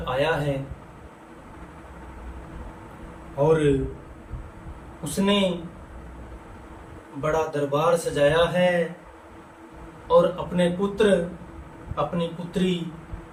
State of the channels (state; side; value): identical; both; correlation 1.00